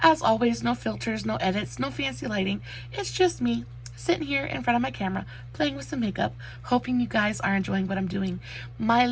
As always, no filters, no edits, no fancy lighting. It's just me sitting here in front of my camera, playing with some makeup, hoping you guys are enjoying what I'm doing.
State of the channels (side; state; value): both; identical; correlation 1.00